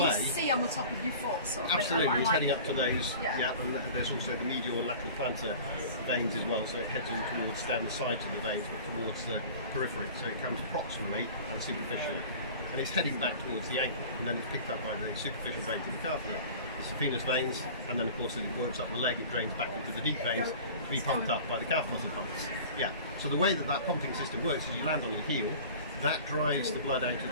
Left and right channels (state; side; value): inverted; both; correlation -0.41